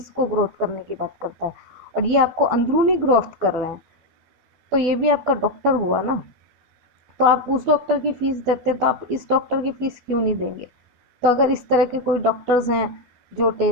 को ग्रोथ करने की बात करता है, और ये आपको अंदरूनी ग्रोथ कर रहे हैं। तो ये भी आपका डॉक्टर हुआ ना। तो आप उस डॉक्टर की फीस देते, तो आप इस डॉक्टर की फीस क्यों नहीं देंगे? तो अगर इस तरह के कोई डॉक्टर्स हैं जो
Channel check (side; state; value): left; late; 12 ms